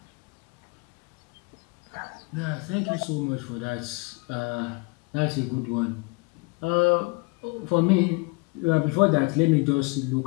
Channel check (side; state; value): right; quieter; 27.8 dB